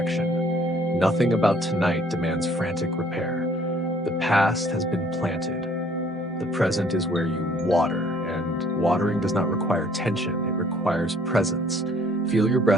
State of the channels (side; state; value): both; normal; correlation 0.59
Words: Nothing about tonight demands frantic repair. The past has been planted. The present is where you water, and watering does not require tension, it requires presence. Feel your